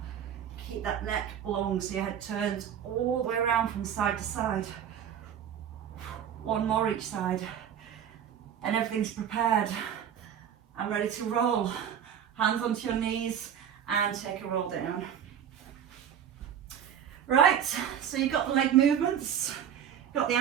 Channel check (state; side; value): quieter; left; 9.0 dB